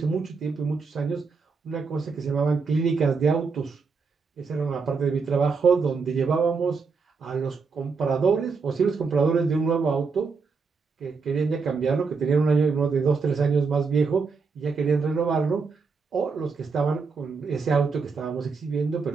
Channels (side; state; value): left; quieter; 4.9 dB